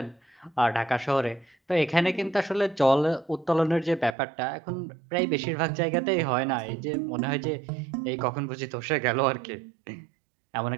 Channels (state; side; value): drops out; left; at 4.2 s